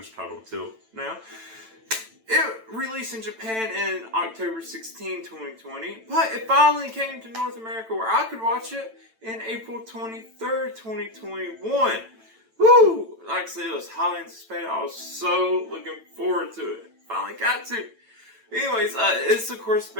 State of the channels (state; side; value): late; left; 9.0 ms